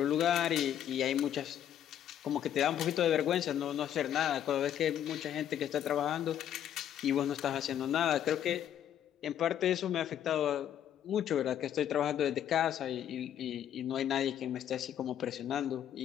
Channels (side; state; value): right; quieter; 10.3 dB